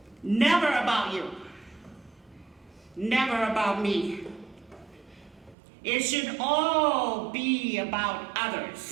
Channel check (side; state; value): left; drops out; at 5.6 s